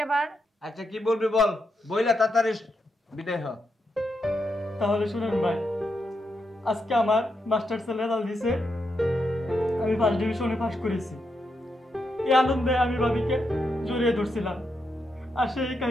আচ্ছা কি বলবি বল, বইলা তাড়াতাড়ি বিদায় হ। তাহলে শুনেন ভাই, আজকে আমার মাস্টার্সের রেজাল্ট দিছে, আমি ফার্স্ট ডিভিশনে পাস করেছি। এই আনন্দে আমি ভাবিকে জড়িয়ে ধরছিলাম, আর সেই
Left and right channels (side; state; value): both; normal; correlation 0.83